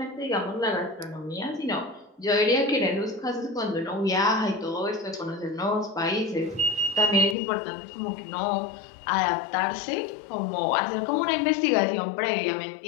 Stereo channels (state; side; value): drops out; right; at 7.4 s